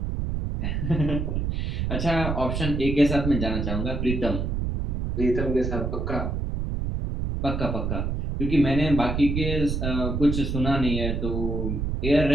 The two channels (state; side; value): noise; right; rumble, 1 dB below the sound